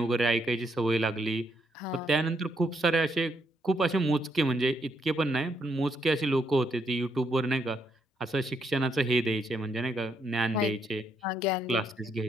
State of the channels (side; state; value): both; normal; correlation 0.75